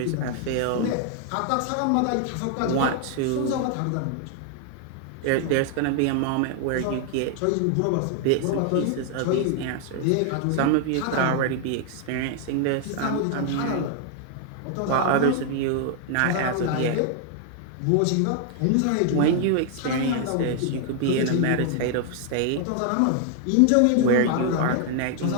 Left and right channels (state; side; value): different; both; correlation 0.00